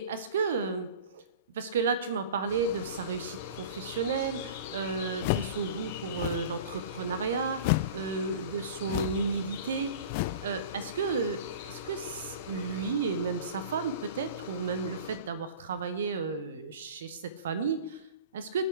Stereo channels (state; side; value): inverted; both; correlation -0.36